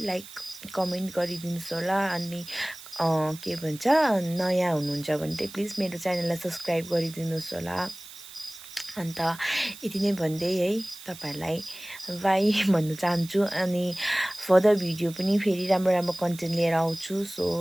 लाइक कमेन्ट गरिदिनुहोस् होला। अनि के भन्छ नयाँ हुनुहुन्छ भने चाहिँ प्लिज मेरो च्यानललाई सब्सक्राइब गरिदिनुहोस् होला। अन्त यति नै भन्दै है तपाईँहरूलाई बाई भन्न चाहन्छु। अनि फर्दर भिडियो पनि फेरि राम्रो राम्रो कन्टेन्ट लिएर आउँछु।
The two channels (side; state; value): right; noise; hiss, 16 dB below the sound